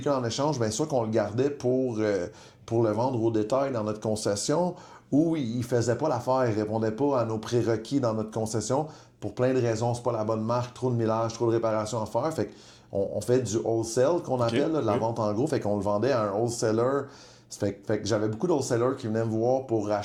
en échange, bien sûr qu'on le gardait pour le vendre au détail dans notre concession, ou il faisait pas l'affaire, il répondait pas à nos prérequis dans notre concession, pour plein de raisons, c'est pas la bonne marque, trop de millage, trop de réparations à faire, fait qu'on fait du wholesale qu'on appelle, là, de la vente en gros, fait qu'on le vendait à un wholesaler. Fait que j'avais beaucoup d'wholesalers qui venaient me voir pour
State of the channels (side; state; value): both; identical; correlation 1.00